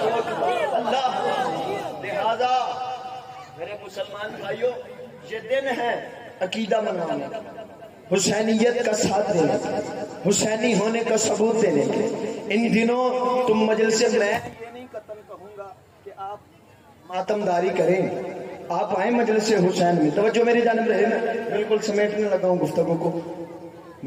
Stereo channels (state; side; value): identical; both; correlation 1.00